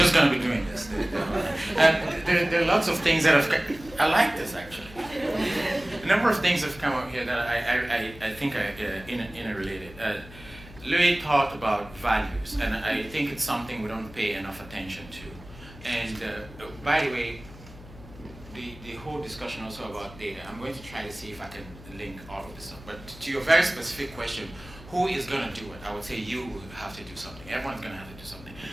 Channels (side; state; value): left; noise; hum, 18 dB below the sound